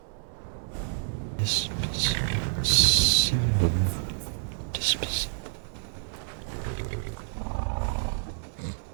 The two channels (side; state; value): left; silent; 59 dB below the other